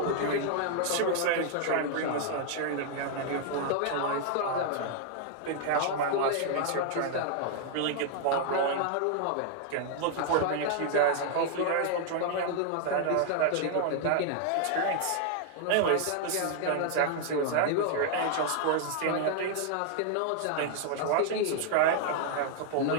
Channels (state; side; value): different; both; correlation 0.00